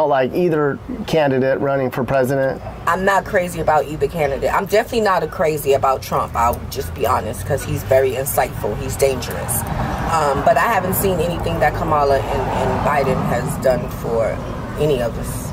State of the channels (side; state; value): both; identical; correlation 1.00